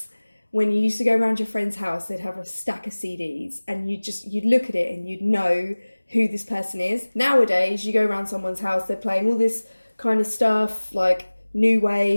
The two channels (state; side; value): inverted; both; correlation -1.00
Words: when you used to go around your friend's house, they'd have a stack of CDs and you'd look at it and you'd know who this person is. Nowadays, you go around someone's house, they're playing all this kind of stuff like new